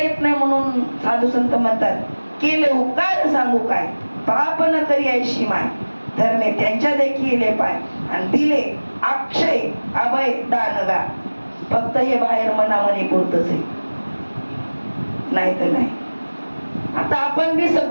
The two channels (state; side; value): inverted; both; correlation -1.00